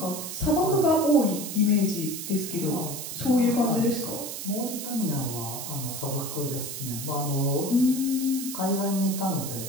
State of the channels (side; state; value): right; noise; hiss, 7 dB below the sound